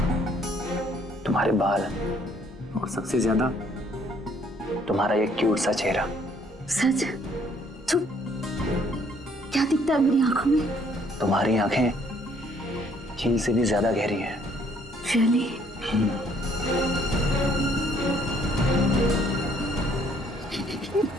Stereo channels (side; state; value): both; normal; correlation 0.64